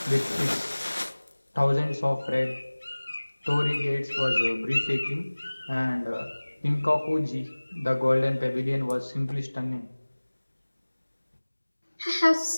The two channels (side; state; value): both; inverted; correlation -1.00